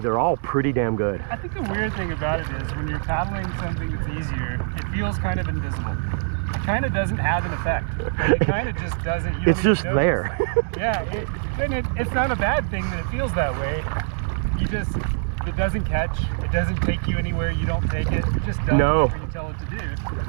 they're all pretty damn good. I think the weird thing about it is when you're paddling something that's easier, it feels kind of invisible. It kind of doesn't have an effect. It kind of just doesn't. It's just there. Yeah, it's not a bad thing that it feels that way. It doesn't catch. It doesn't take you anywhere you don't take it. It just does whatever you tell it to do.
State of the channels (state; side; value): silent; left; 63 dB below the other